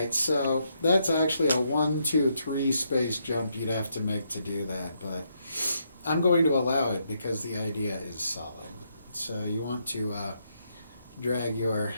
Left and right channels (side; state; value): both; inverted; correlation -0.77